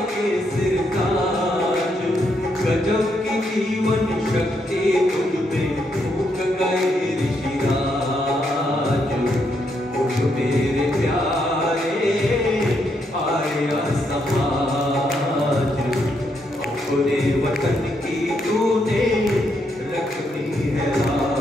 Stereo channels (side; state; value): both; normal; correlation 0.77